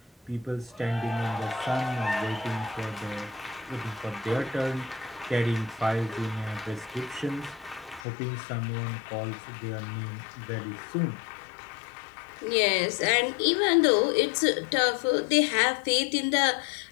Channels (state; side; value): drops out; right; at 8.1 s